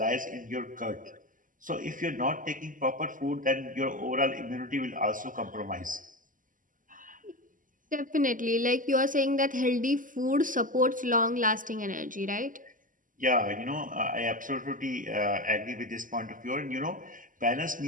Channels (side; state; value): left; late; 0.38 ms